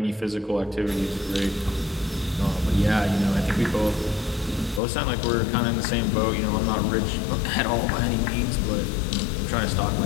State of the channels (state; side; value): drops out; right; at 4.8 s